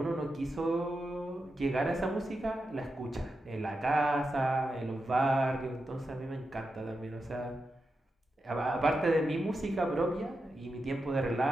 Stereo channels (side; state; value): both; normal; correlation 0.89